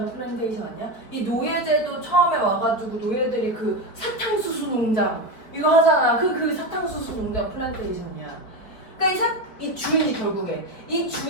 플랜테이션 아니야? 이 노예제도 처음에 와가지고 노예들이 그 사탕수수 농장 이거 하잖아. 그 사탕수수 농장 플랜테이션이야. 그러니까 이 주인이 결국에 이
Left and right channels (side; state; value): right; late; 4.6 ms